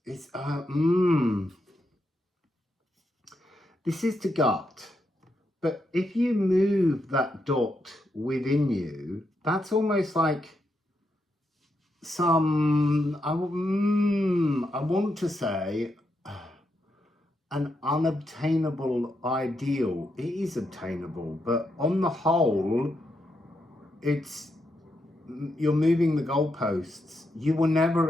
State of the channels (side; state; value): both; normal; correlation 0.82